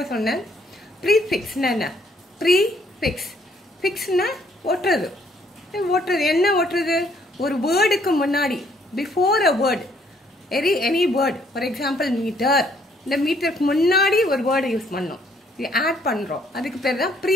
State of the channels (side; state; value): both; normal; correlation 0.66